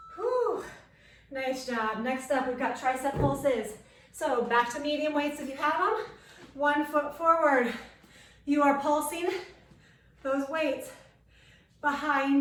Whew. Nice job. Next up, we've got tricep pulses. So back to medium weights if you have them. 1 foot forward. You are pulsing those weights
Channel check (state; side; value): identical; both; correlation 1.00